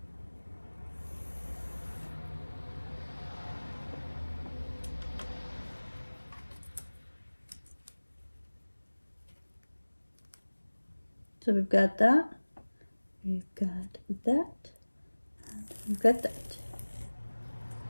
So we've got that, we've got that, and we've got that.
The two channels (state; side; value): inverted; both; correlation -1.00